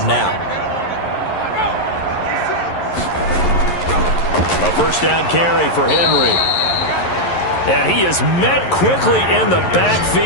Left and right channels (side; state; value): right; late; 11 ms